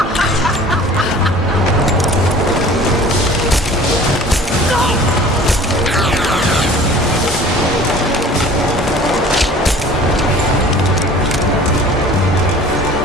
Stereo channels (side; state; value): both; normal; correlation 0.46